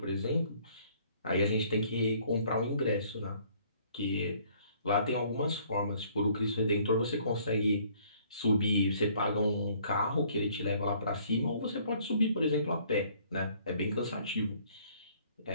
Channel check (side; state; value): both; inverted; correlation -0.60